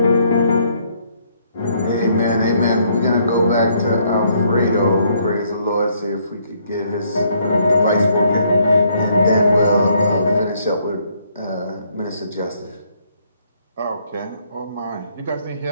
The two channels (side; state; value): both; inverted; correlation -0.69